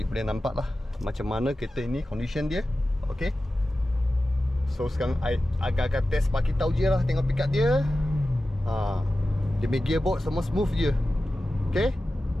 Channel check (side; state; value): both; normal; correlation 0.94